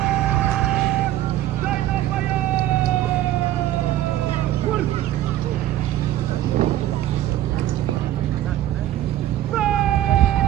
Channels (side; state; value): left; quieter; 13.5 dB